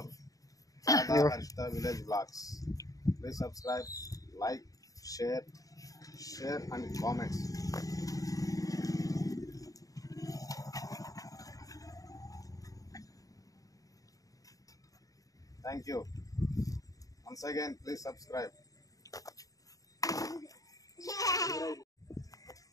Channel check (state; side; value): late; right; 0.17 ms